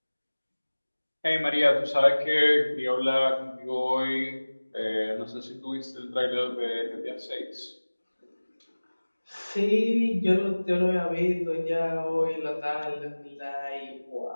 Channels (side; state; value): both; inverted; correlation -1.00